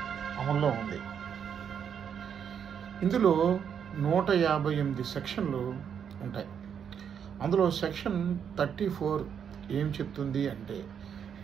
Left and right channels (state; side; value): quieter; left; 7.9 dB